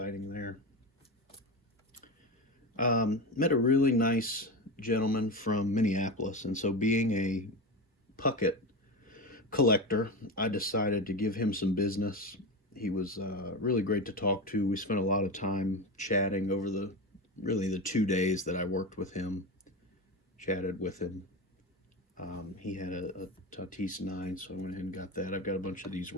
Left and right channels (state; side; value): normal; both; correlation 0.21